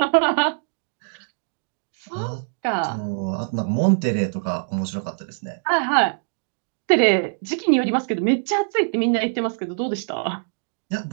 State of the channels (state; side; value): silent; left; digital silence